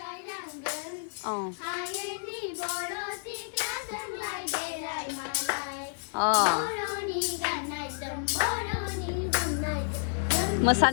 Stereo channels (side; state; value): right; silent; 58 dB below the other